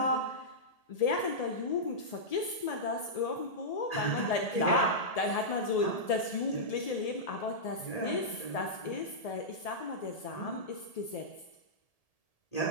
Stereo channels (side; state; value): right; late; 1.8 ms